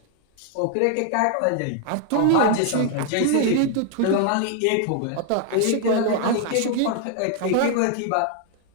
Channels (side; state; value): both; different; correlation 0.00